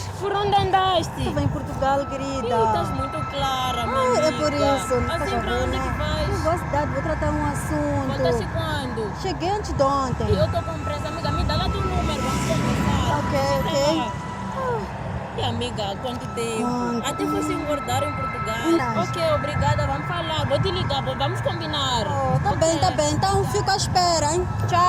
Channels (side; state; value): both; identical; correlation 1.00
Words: Por onde andaste? Estou em Portugal, Ih, querida. estás muito clara, minha Ai, amiga. é por isso. Assim, Faz pra onde favor, que né? vais? Eu vou à cidade, vou tratar um Voltaste assunto. quando? Cheguei antes de ontem. E eu estou com pressa, amiga. Me dá lá teu número, vamos conversar. Ok, ok. E amiga, quanto tempo? Quanto? Até fosse engordar em Portugal. Verdade. Ok, obrigada, vamos falar. Vou te ligar, vamos combinar. Oh, tá Ok. bem, tá bem. Então fico à espera, hein?